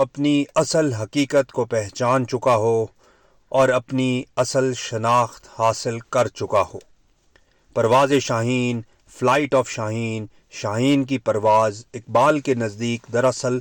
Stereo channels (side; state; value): both; identical; correlation 1.00